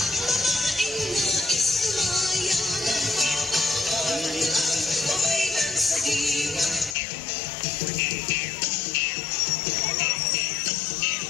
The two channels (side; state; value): right; drops out; at 7.0 s